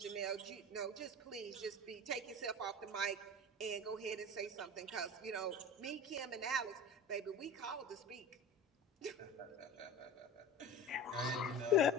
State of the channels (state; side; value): normal; both; correlation 0.33